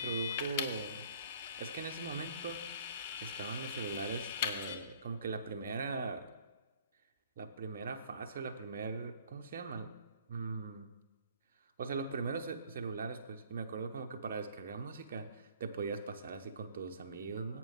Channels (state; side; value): inverted; both; correlation -0.55